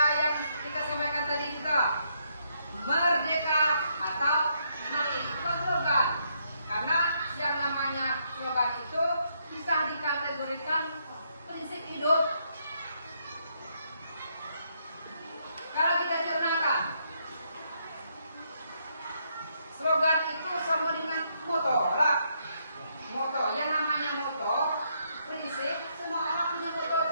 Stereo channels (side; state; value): both; inverted; correlation -0.75